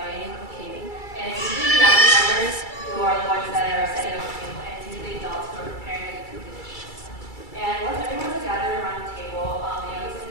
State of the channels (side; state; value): right; late; 2.3 ms